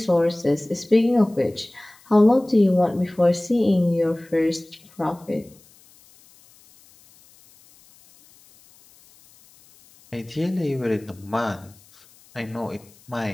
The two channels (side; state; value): left; noise; hiss, 28 dB below the sound